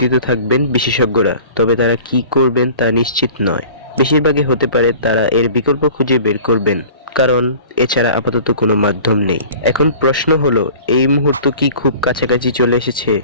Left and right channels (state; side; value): inverted; both; correlation -0.44